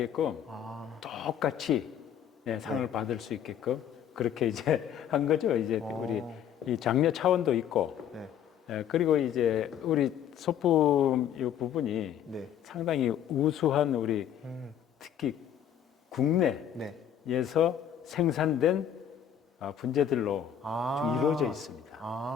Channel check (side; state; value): right; quieter; 9.4 dB